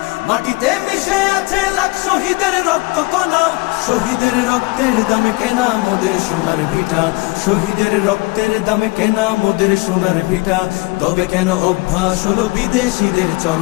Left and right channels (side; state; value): right; quieter; 24.5 dB